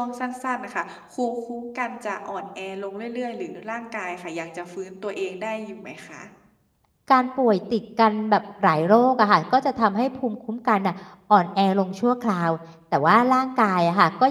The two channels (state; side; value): identical; both; correlation 1.00